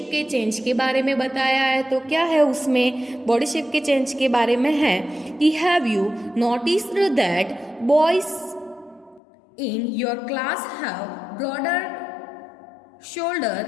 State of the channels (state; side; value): drops out; right; at 9.2 s